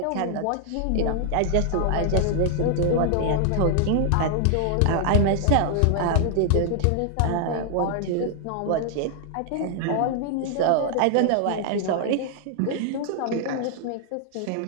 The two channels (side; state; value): both; different; correlation 0.00